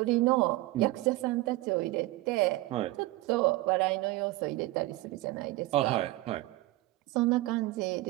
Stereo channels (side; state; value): left; quieter; 19.0 dB